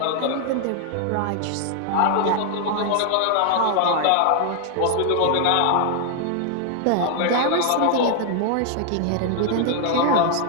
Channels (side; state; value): both; different; correlation 0.00